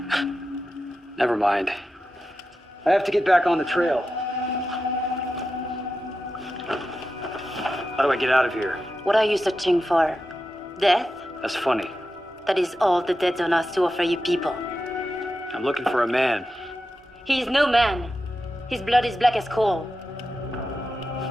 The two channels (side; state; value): both; normal; correlation 0.91